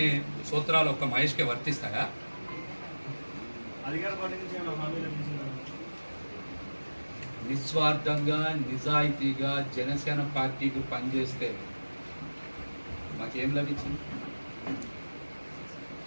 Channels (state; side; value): inverted; both; correlation -1.00